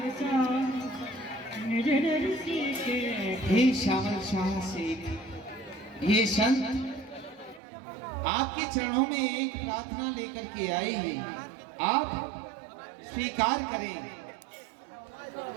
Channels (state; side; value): drops out; left; at 7.6 s